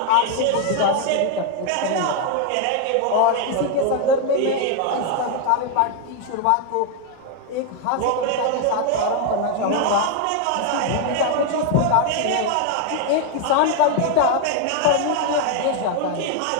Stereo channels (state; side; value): different; both; correlation 0.01